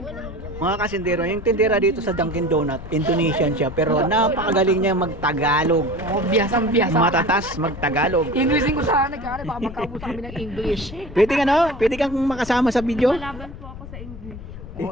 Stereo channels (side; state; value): left; noise; rumble, 12 dB below the sound